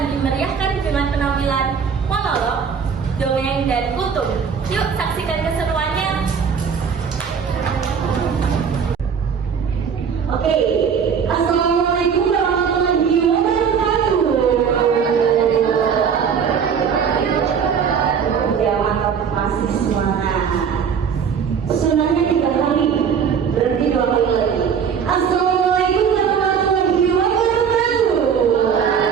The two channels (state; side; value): quieter; left; 6.9 dB